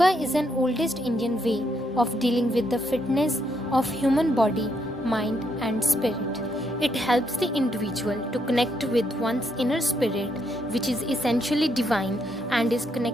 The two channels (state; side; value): normal; both; correlation 0.76